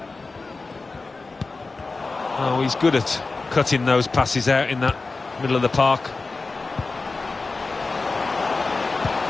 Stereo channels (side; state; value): right; quieter; 3.8 dB